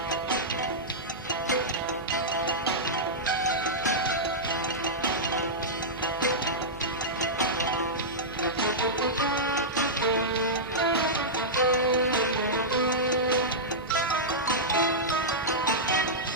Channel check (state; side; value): noise; right; hum, 17 dB below the sound